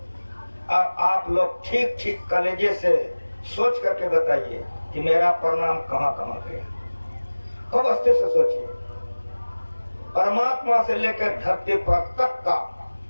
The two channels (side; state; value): both; inverted; correlation -1.00